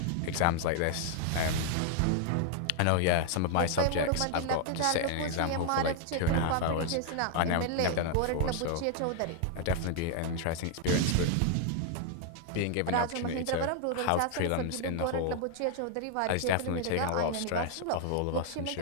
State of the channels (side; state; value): both; different; correlation 0.00